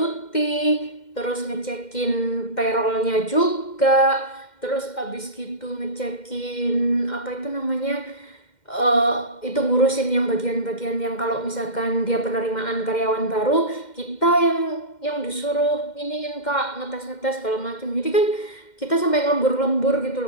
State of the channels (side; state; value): right; late; 2.1 ms